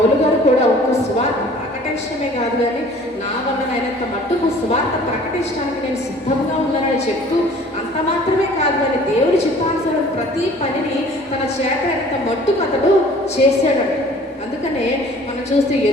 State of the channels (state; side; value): normal; both; correlation 0.51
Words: గారు కూడా ఒక సువార్త ప్రకటన ప్రకటించడమే కాదు కానీ నా వలనైనంత మట్టుకు సువార్త ప్రకటించడానికి నేను సిద్ధంగా ఉన్నానని చెప్తూ అంత మాత్రమే కాదు కానీ దేవుడి చిత్తానుసారం ప్రతి పనిని తన చేత అయినంత మట్టుకు అతడు చేశాడంట. అందుకనే మనం చూస్తే